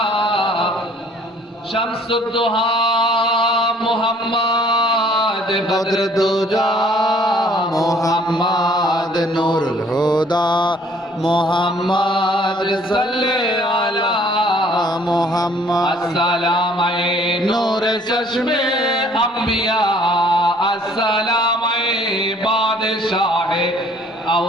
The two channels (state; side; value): normal; both; correlation 0.58